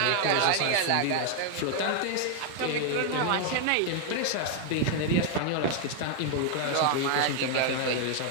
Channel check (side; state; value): both; different; correlation 0.00